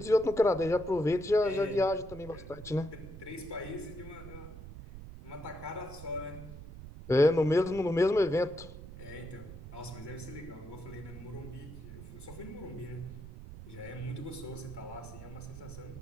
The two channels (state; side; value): noise; right; rumble, 13 dB below the sound